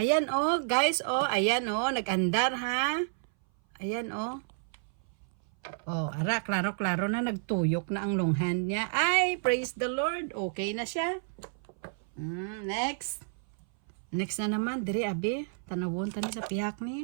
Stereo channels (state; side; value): silent; left; 57 dB below the other